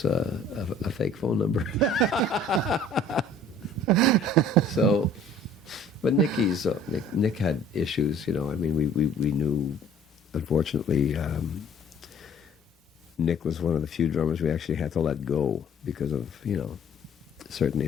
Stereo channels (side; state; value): both; normal; correlation 0.52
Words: phone number. So, but Nick had issues, we knew. Unfortunately, Nick was one of the few drummers we actually had to let go because of, certain